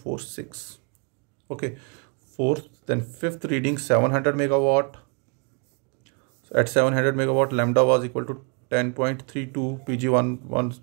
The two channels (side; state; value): left; quieter; 36.9 dB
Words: Okay, fourth, then fifth reading 700 megawatt. At 700 megawatt, lambda was equal to 10.32, PG1 was